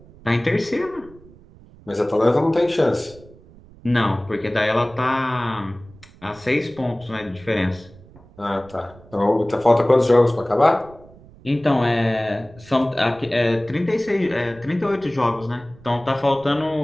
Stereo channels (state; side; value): noise; right; rumble, 23 dB below the sound